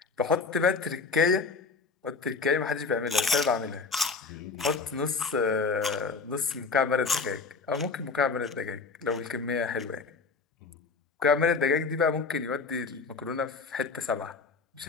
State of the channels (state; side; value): quieter; right; 4.4 dB